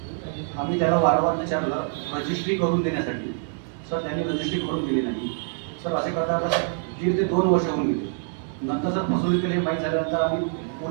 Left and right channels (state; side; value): silent; left; 57 dB below the other